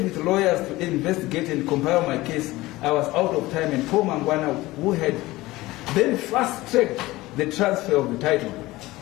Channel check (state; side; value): quieter; right; 18.9 dB